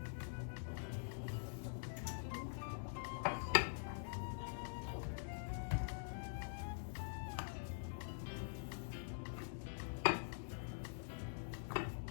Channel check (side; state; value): right; silent; digital silence